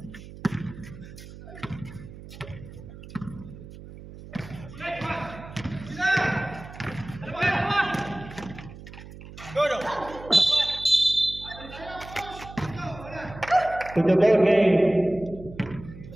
To the ball game.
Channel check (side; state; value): right; noise; hum, 15 dB below the sound